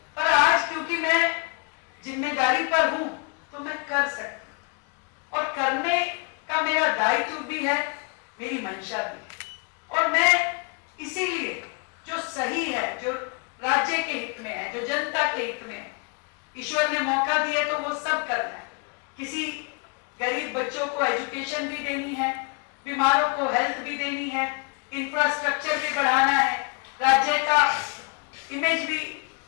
पर आज क्योंकि मैं जिम्मेदारी पर हूं तो मैं कर सकती हूं, और करने का मेरा दायित्व भी है, मेरी मंशा भी है। और मैं इसीलिए जो सही है, जो राज्य के हित में है, जो जनता के हित में है, ईश्वर ने मौका दिया तो वो सब करना है। किसी गरीब बच्चों को एजुकेशन भी देनी है, बीमारों को हेल्थ भी देनी है, इंफ्रास्ट्रक्चर भी बढ़ाना है, राज्य का इमेज भी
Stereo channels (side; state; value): right; quieter; 32.8 dB